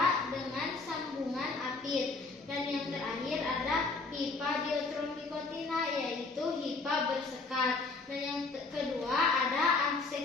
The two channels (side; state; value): right; quieter; 3.8 dB